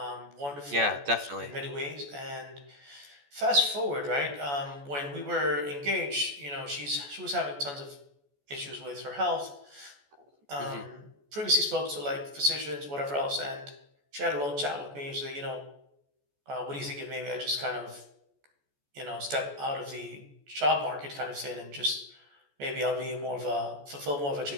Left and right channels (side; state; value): left; late; 14 ms